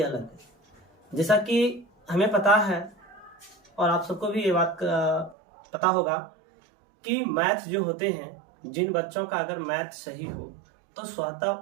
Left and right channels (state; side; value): drops out; left; at 5.4 s